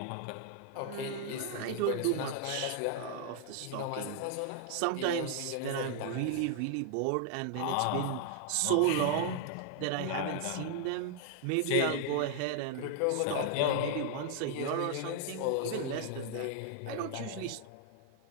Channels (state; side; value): different; both; correlation 0.00